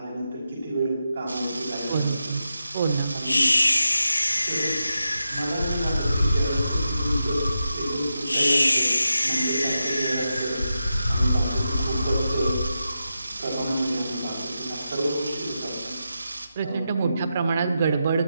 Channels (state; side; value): inverted; both; correlation -0.88